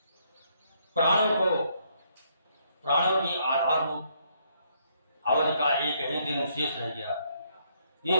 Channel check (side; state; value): both; inverted; correlation -0.71